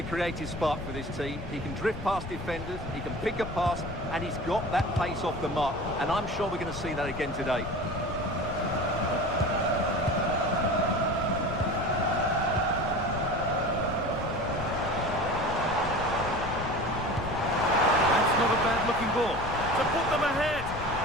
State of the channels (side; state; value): left; noise; rumble, 10 dB below the sound